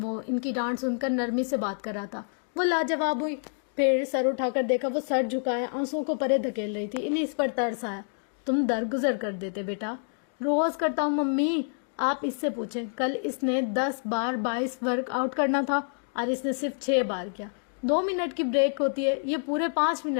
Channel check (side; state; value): right; silent; digital silence